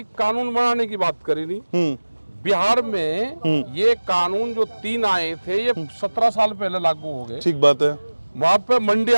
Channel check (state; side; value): inverted; both; correlation -1.00